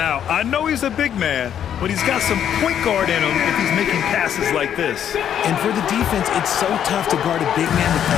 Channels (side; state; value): right; quieter; 9.5 dB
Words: I know he's a big man, but he's got some point guard in him if he's making passes like this. And for the defense, it's so tough to guard a big man with